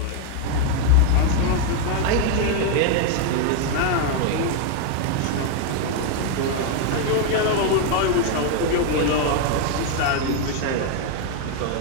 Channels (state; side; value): different; both; correlation 0.01